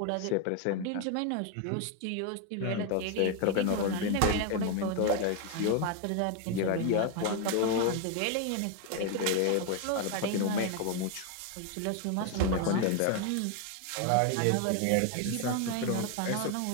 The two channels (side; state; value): both; different; correlation 0.01